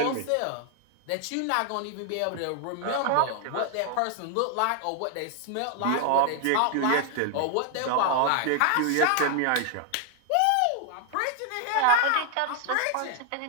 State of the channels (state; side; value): different; both; correlation 0.00